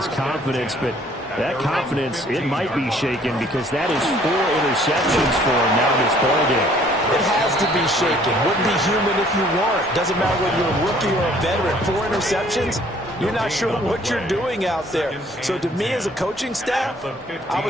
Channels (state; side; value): normal; both; correlation 0.59